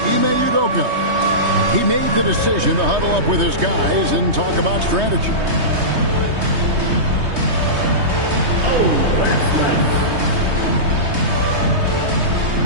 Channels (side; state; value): left; late; 3.2 ms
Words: Ime Udoka. He made the decision to huddle up with his guys and talk about strategy.